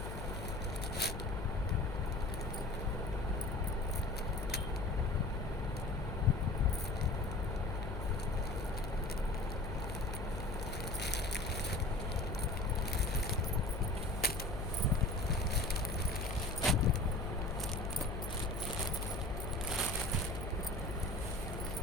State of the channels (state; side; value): noise; left; hum, 6 dB below the sound